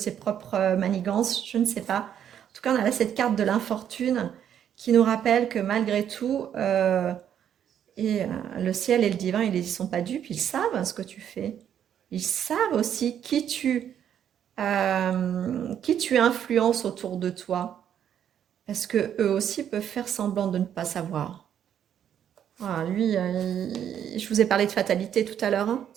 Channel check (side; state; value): left; quieter; 9.4 dB